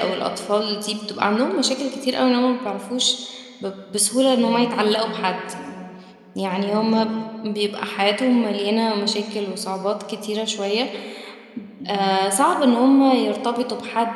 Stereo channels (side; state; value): both; identical; correlation 1.00